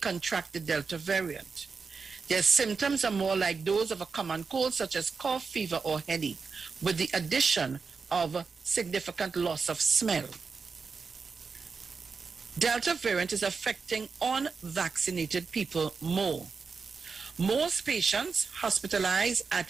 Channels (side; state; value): left; quieter; 5.0 dB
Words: the Delta variant. Their symptoms are more like those of a common cold, such as cough, fever, or headache, with the addition of significant loss of smell. Delta variant is affecting unvaccinated people more. Most patients hospitalized at